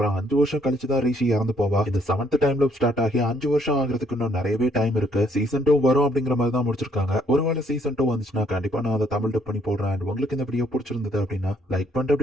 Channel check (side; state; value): both; normal; correlation 0.68